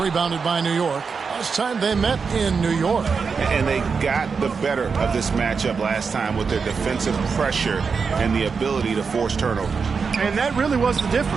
by New York. Last time they met in New York. And they got the better of this matchup last time with their defensive pressure and the ability to force turnover. And that really was the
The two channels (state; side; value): quieter; left; 5.4 dB